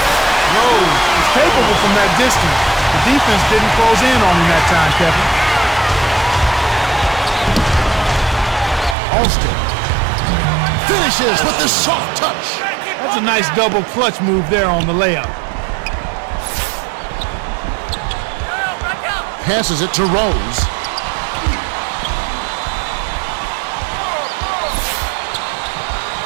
Rose is capable from that distance. The defense didn't close in on him that time, Kevin. Alston finishes with the soft touch. That's a nice double clutch move there on the layup. Passes it to Rose.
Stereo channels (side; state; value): left; drops out; at 9.0 s